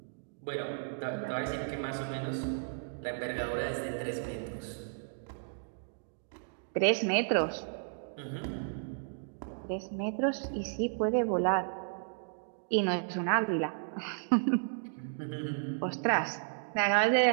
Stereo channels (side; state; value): left; silent; digital silence